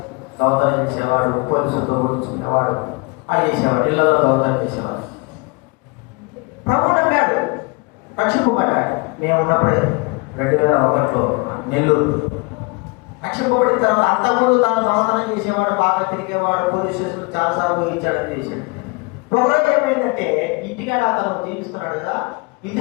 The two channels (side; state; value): right; quieter; 29.0 dB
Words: దొంగతనం చేసేవాడు, పోలీసులతో కూర్చునేవాడు, అది చేసేవాడు, ఇళ్ళలో దొంగతనం చేసేవాడు. ప్రభువు నమ్మాడు, రక్షింపబడ్డాడు. మేము ఉన్నప్పుడే 2001లో నెల్లూరు రక్షింపబడిన తర్వాత అంతకుముందు తాను దొంగతనం చేసేవాడు, బాగా తిరిగేవాడు, పోలీస్ స్టేషన్ చాలాసార్లు ఊహించాడని చేశాడు. ఒకరోజు ఏమైందంటే ఇంటికాడ అతను జీవిస్తున్నాడు కదా, ఇంటి